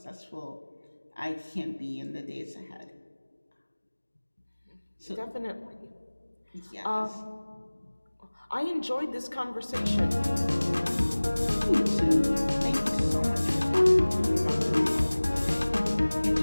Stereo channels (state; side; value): inverted; both; correlation -1.00